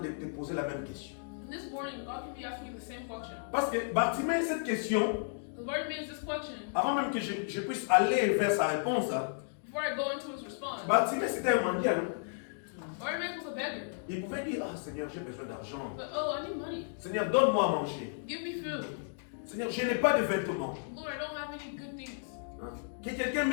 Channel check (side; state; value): right; silent; digital silence